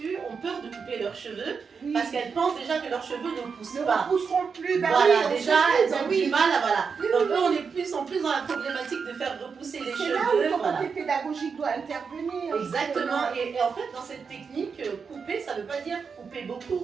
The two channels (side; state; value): left; quieter; 5.7 dB